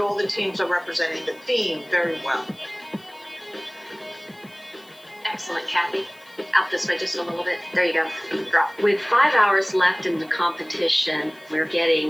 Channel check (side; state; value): left; noise; hiss, 27 dB below the sound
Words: the teams are representing the theme very well. Excellent, Kathy. Out this way just a little bit. There you go. Drop. With 5 hours left in the competition, we're